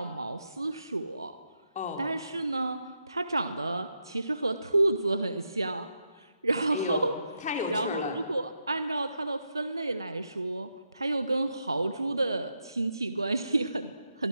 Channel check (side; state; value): both; inverted; correlation -0.83